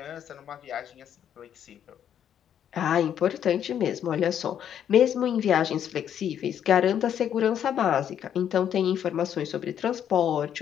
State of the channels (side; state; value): right; quieter; 9.4 dB